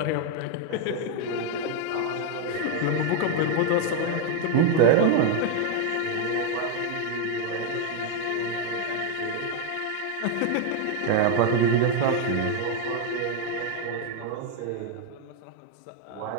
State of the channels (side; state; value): both; different; correlation 0.01